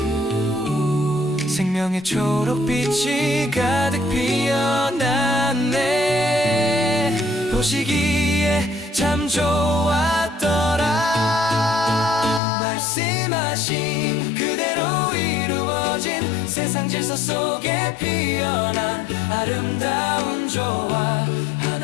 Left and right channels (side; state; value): right; drops out; at 12.4 s